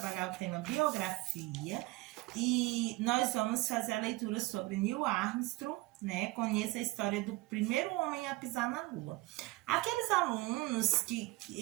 o tema biografia. E nós vamos fazer a leitura sobre Neil Armstrong, né? Conheça a história do primeiro homem a pisar na Lua. Aqueles alunos que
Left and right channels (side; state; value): left; quieter; 21.0 dB